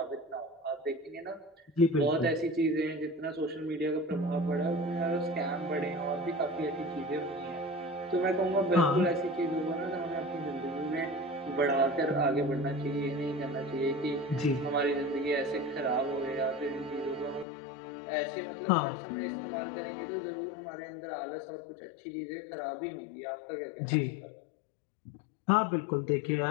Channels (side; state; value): right; drops out; at 17.4 s